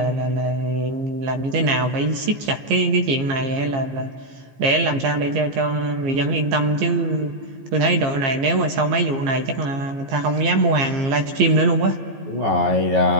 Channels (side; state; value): left; late; 15 ms